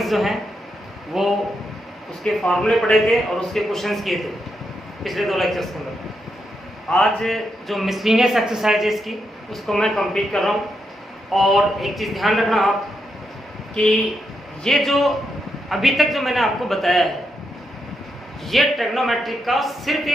जो हैं वो उसके फार्मूले पढ़े थे और उसके क्वेश्चंस किए थे पिछले 2 लेक्चर्स के अंदर। आज जो मिसलिनियस एक्सरसाइज है इसकी उसको मैं कंप्लीट कर रहा हूँ। और एक चीज़ ध्यान रखना आप कि ये जो अभी तक जो मैंने आपको बताया है ये ट्रिग्नोमेट्रिक का सिर्फ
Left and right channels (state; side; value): normal; both; correlation 0.82